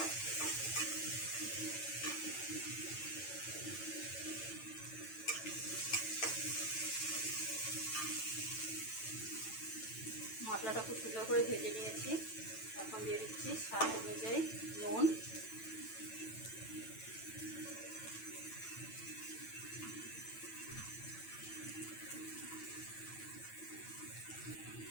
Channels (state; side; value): late; right; 9.1 ms